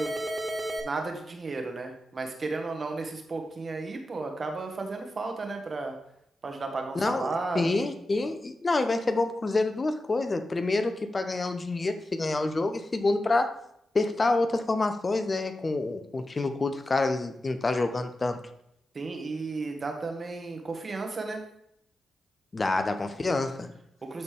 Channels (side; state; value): both; normal; correlation 0.91